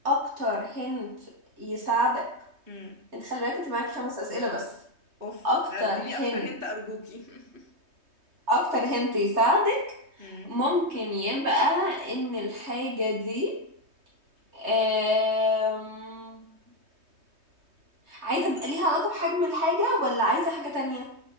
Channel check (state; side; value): late; left; 3.2 ms